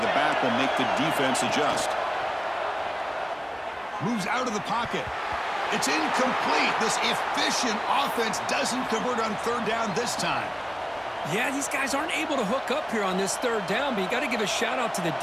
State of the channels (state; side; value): identical; both; correlation 1.00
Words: back will make the defense adjust. Moves out of the pocket. It's incomplete. This efficient offense doesn't convert on third down this time. Yeah, these guys aren't able to hook up here on this third down, but you got to give a shout out to the